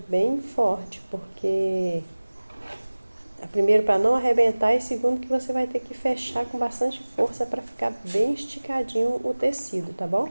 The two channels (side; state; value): both; inverted; correlation -1.00